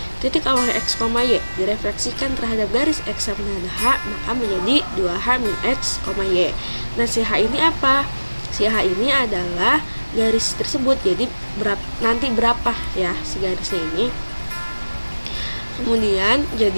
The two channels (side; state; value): both; inverted; correlation -1.00